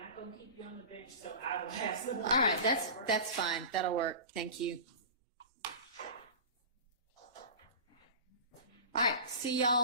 going to keep you on the bench, so I will have some. All right, that's fine. That'll work. Thank you. All right, see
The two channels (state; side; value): inverted; both; correlation -0.34